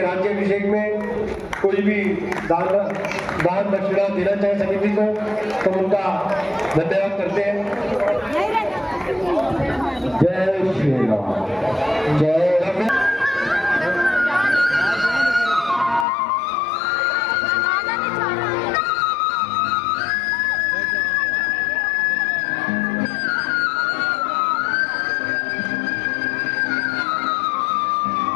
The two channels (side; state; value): right; drops out; at 16.1 s